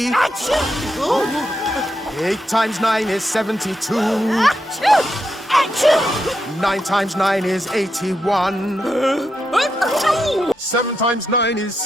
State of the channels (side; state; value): both; normal; correlation 0.84